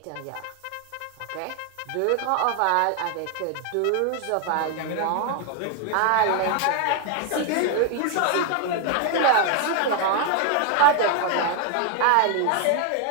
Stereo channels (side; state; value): both; different; correlation 0.01